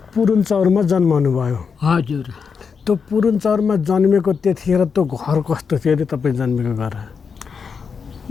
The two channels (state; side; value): quieter; right; 5.9 dB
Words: पुरुन्चौरमा जन्मनु भयो? हजुर। त्यो पुरुन्चौरमा जन्मेको त्यतिखेर त्यो घर कस्तो थियो अरे तपाईँ जन्मेको घर?